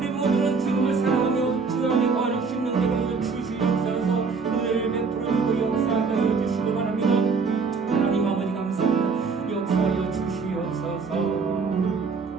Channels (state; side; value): quieter; left; 4.8 dB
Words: 모두는 주님을 사랑하며 주 안에 거하는 심령되게 하여 주시옵소서. 은혜를 베풀어주고 역사하게 해주시기 바랍니다. 하나님 아버지 감사합니다. 역사하여 주시옵소서.